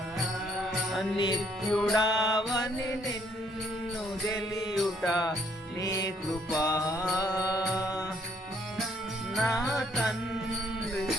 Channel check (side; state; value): both; normal; correlation 0.67